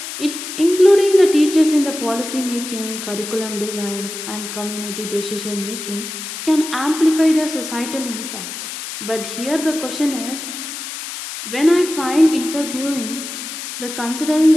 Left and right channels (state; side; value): noise; left; hiss, 8 dB below the sound